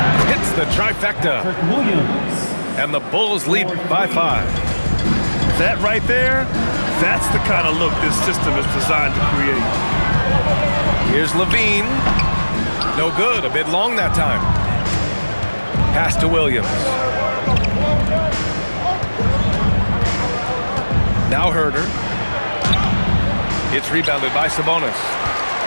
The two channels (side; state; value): both; inverted; correlation -1.00